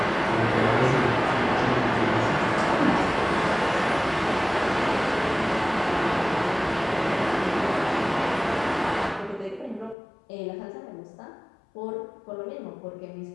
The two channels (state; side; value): drops out; right; at 10.0 s